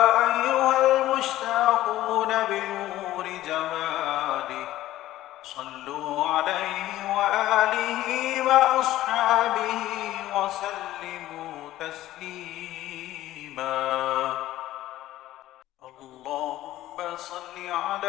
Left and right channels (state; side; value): quieter; right; 14.8 dB